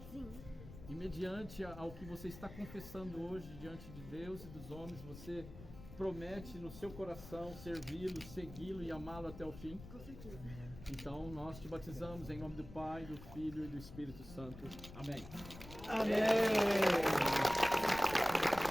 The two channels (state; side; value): noise; left; rumble, 15 dB below the sound